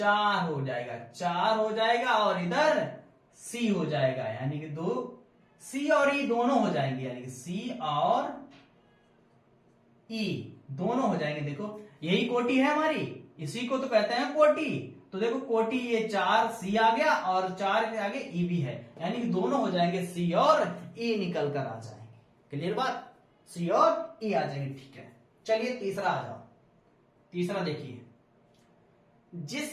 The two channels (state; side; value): identical; both; correlation 1.00